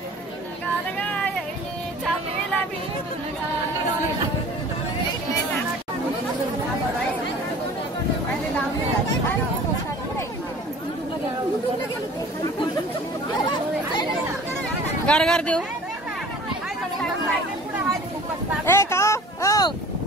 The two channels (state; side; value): normal; both; correlation 0.45